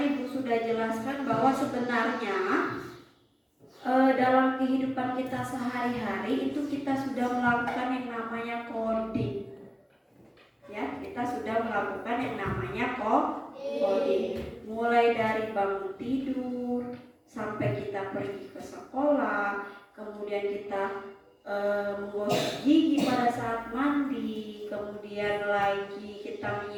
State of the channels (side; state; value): both; identical; correlation 1.00